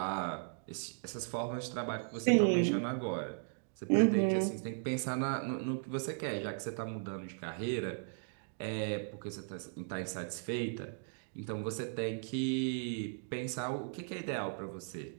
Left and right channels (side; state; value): left; silent; digital silence